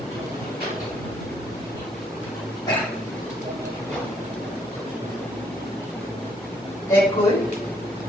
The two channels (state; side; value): normal; both; correlation 0.69